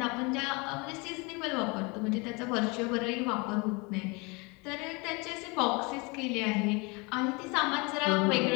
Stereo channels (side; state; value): right; quieter; 28.3 dB